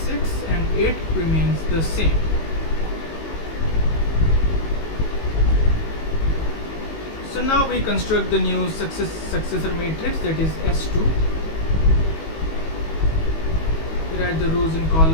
and 8 remains the same. So now we construct the new successor matrix, that is S2. We write the rows and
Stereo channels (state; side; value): late; right; 19 ms